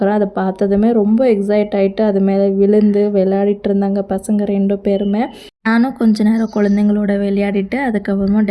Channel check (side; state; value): both; identical; correlation 1.00